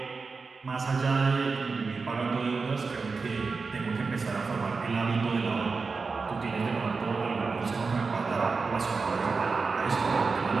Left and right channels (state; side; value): quieter; left; 4.5 dB